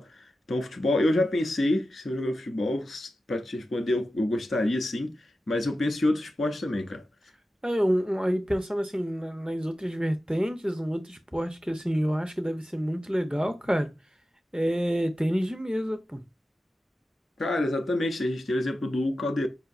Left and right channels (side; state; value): both; normal; correlation 0.93